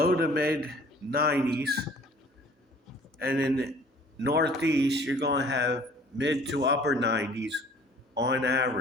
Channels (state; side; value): normal; both; correlation 0.51